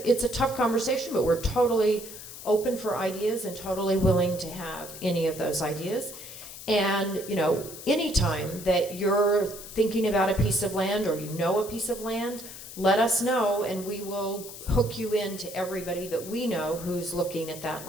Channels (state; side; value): noise; left; hiss, 13 dB below the sound